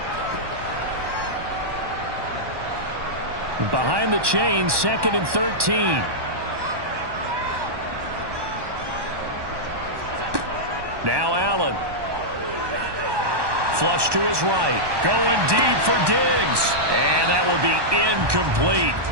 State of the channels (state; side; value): late; left; 1.1 ms